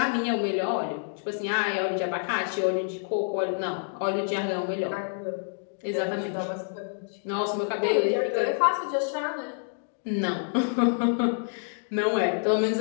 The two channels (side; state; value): right; silent; digital silence